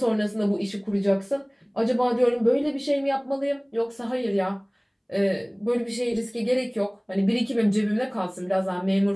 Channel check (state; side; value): identical; both; correlation 1.00